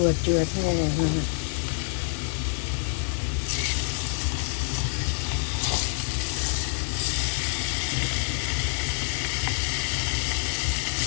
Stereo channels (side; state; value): right; silent; digital silence